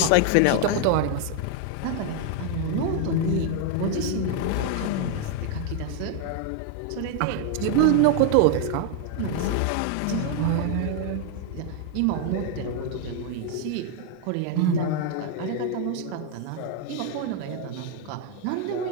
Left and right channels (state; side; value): different; both; correlation 0.00